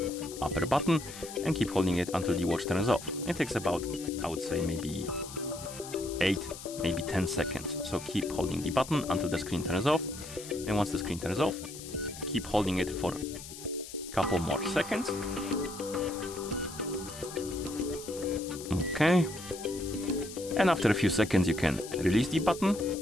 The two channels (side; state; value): left; noise; hiss, 13 dB below the sound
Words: upper button and keep holding it until the watch turns off. It takes about, I would say, maybe 8, maybe 10 seconds. So keep holding the button until the screen turns off, and once the screen turns off, keep holding it for a couple more seconds. Okay, and after a few seconds you can release the button,